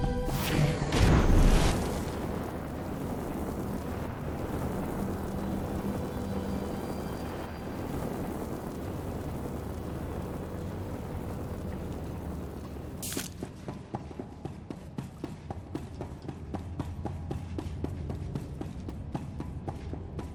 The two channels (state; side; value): identical; both; correlation 1.00